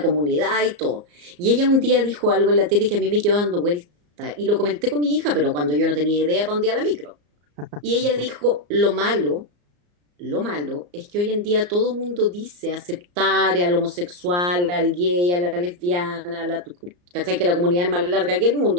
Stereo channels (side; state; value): left; late; 34 ms